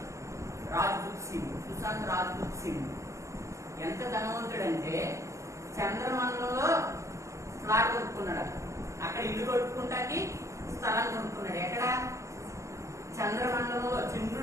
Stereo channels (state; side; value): late; left; 0.15 ms